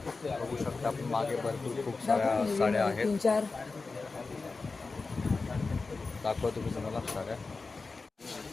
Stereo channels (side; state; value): right; quieter; 4.0 dB